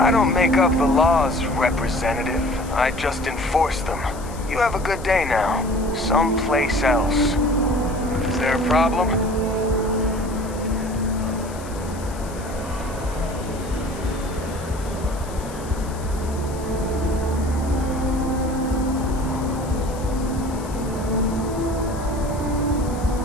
don't make up the laws, Representative. I just enforce them. You have a good day now. Someplace else. Is there a problem?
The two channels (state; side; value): noise; left; hiss, 18 dB below the sound